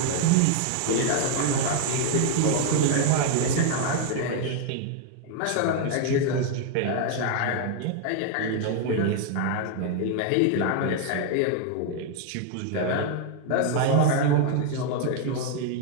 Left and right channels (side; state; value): both; different; correlation 0.00